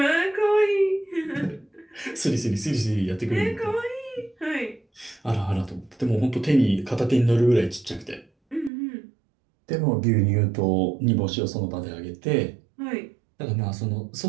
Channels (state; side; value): drops out; left; at 8.7 s